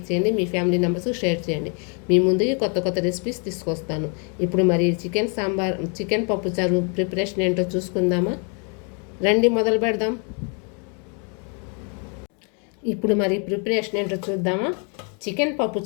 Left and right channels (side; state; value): right; quieter; 37.8 dB